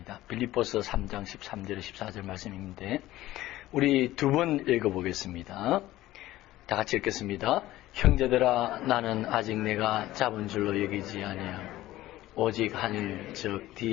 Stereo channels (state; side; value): quieter; right; 15.8 dB